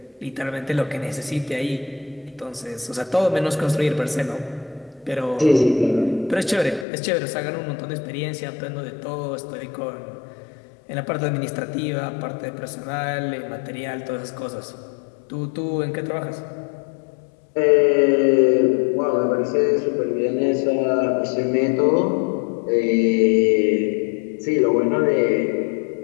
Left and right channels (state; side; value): drops out; right; at 6.9 s